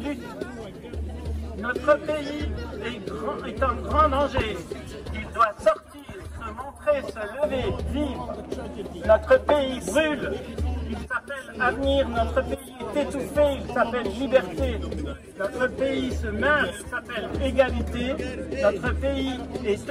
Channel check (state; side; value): identical; both; correlation 1.00